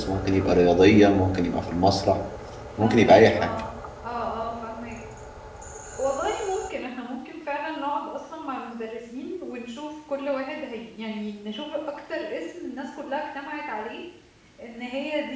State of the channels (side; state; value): both; identical; correlation 1.00